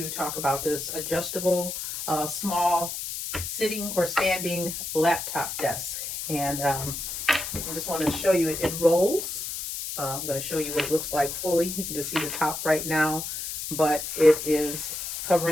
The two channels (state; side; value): noise; left; hiss, 5 dB below the sound